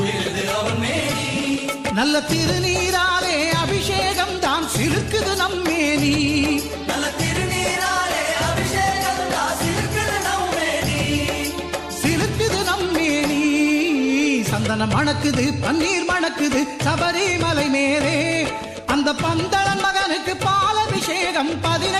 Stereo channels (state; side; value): identical; both; correlation 1.00